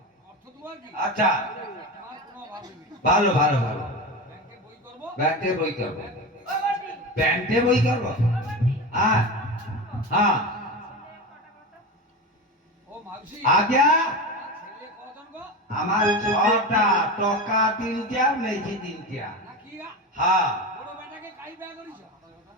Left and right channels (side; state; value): both; normal; correlation 0.23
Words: আচ্ছা ভালো ভালো ভালো ব্যাংকে বই করবো ও বড়ি ব্যাংকে বই করবো ও বড়ি হ্যাঁ হ্যাঁ আজ্ঞা আমার 6টা টাকা 3টা মেজি 3টা হ্যাঁ